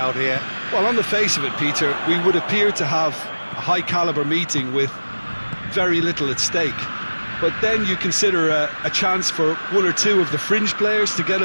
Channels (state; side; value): inverted; both; correlation -1.00